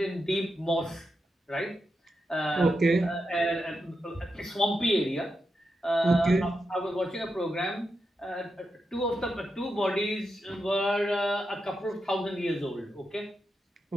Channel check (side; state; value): both; normal; correlation 0.87